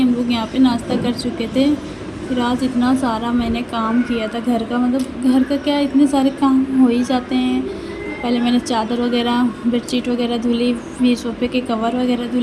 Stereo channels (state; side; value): identical; both; correlation 1.00